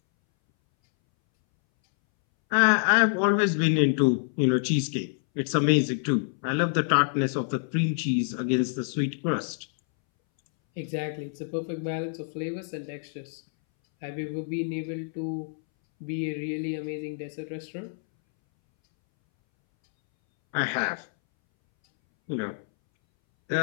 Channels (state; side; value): silent; right; 60 dB below the other